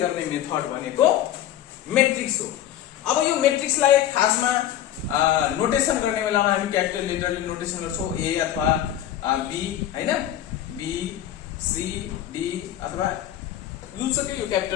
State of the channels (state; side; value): quieter; right; 11.8 dB